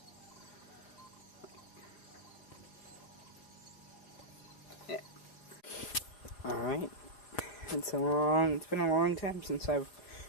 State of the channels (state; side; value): late; right; 5.4 ms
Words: Yeah. Alright. It's been a long time since I've